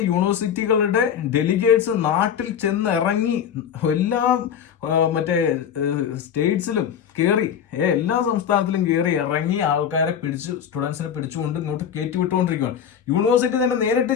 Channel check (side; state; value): right; quieter; 8.4 dB